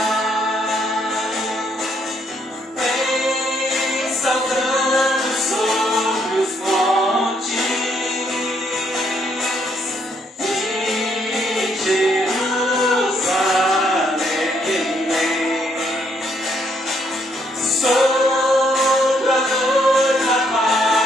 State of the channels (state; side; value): normal; both; correlation 0.72